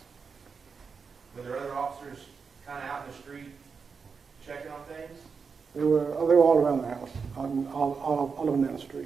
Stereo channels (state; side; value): quieter; left; 5.5 dB